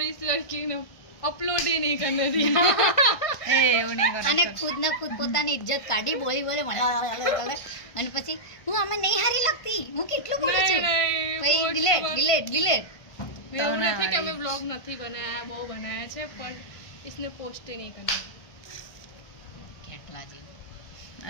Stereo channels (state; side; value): late; right; 1.5 ms